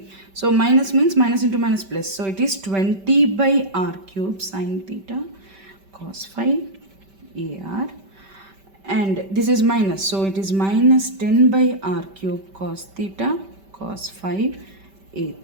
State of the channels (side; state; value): left; late; 5.1 ms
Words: So minus means minus into minus plus. So it is 20 by R cube sin theta cos phi AR and this is minus, so it is minus 10 by R cube cos theta cos phi A